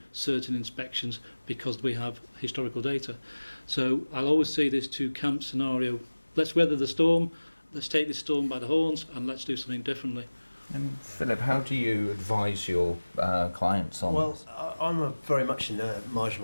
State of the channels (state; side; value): inverted; both; correlation -1.00